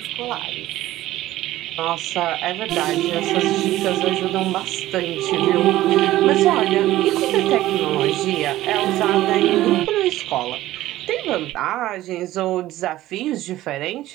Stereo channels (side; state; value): left; quieter; 15.4 dB